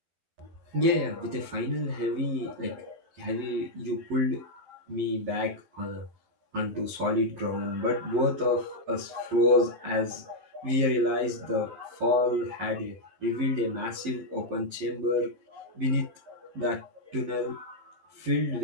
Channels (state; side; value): late; left; 11 ms